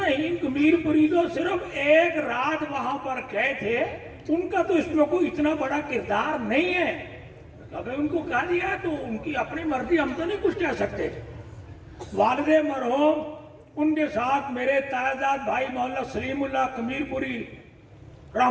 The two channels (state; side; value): identical; both; correlation 1.00